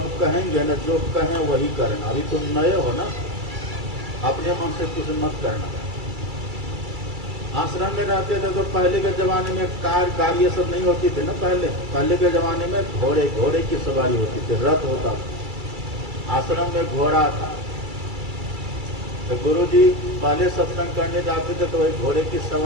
कहेंगे ना, जो कहें वही करना। अभी तुम नए हो ना, अपने मन से कुछ मत करना। आश्रम में रहते थे तो पहले के जमाने में कार गाड़ी ये सब नहीं होती थी ना। पहले के जमाने में घोड़े की सवारी होती थी, रथ होता था। आश्रम में घोड़ा था। तो गुरुजी पहले सत्संग करने जाते थे तो वही घोड़े की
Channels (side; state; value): left; late; 2.3 ms